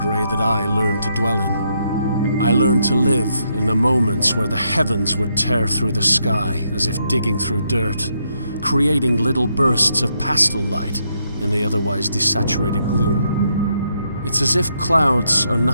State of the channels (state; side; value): inverted; both; correlation -0.78